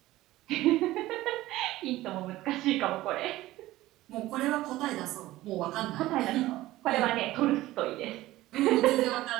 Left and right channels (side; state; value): left; quieter; 16.6 dB